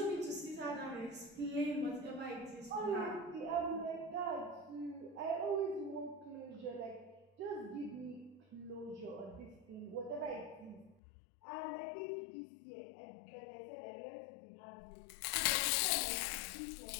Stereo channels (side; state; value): right; drops out; at 11.0 s